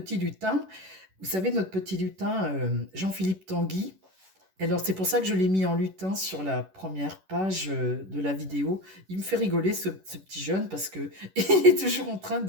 lutin. Vous savez, notre petit lutin, Jean-Philippe Tanguy. Alors, c'est pour ça que je l'ai mis en lutin sur la première page de la vidéo. Il me fait rigoler, ce petit jeune, parce que il est toujours en train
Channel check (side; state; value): left; late; 11 ms